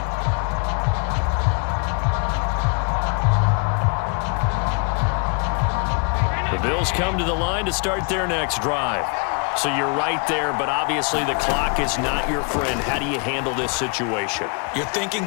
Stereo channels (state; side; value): quieter; right; 36.8 dB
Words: The Bills come to the line to start their next drive. So you're right there, but obviously the clock is not your friend. How do you handle this situation? You're thinking